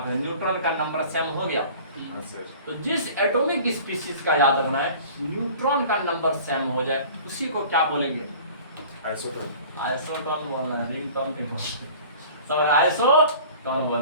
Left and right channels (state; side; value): inverted; both; correlation -0.45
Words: न्यूट्रॉन का नंबर सेम हो गया। तो जिस एटॉमिक स्पीशीज का याद रखना है न्यूट्रॉन का नंबर सेम हो जाए, उसी को क्या बोलेंगे? आइसोटोन। आइसोटोन बोलना है, रिंगटोन नहीं बोलना, समझ? आइसोटोन